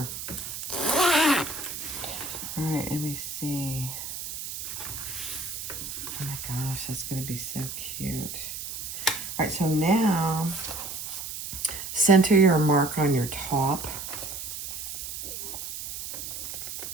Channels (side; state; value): right; noise; hiss, 7 dB below the sound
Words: All right, let me see. Oh my gosh, that's going to be so cute. All right, so now center your mark on your top.